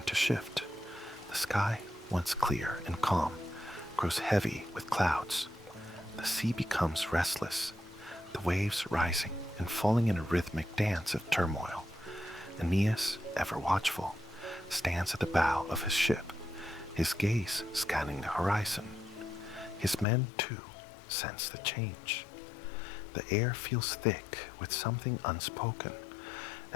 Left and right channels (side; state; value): right; drops out; at 20.1 s